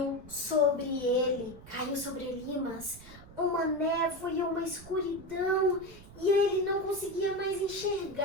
sobre Elimas, uma névoa e uma escuridão, e ele não conseguia mais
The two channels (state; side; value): noise; right; rumble, 19 dB below the sound